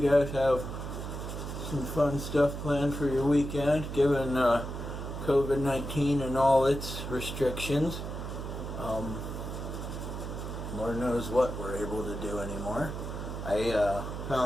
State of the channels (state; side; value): noise; right; hum, 6 dB below the sound